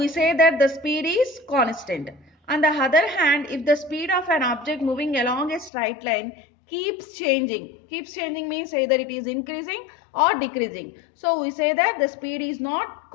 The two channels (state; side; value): drops out; right; at 5.7 s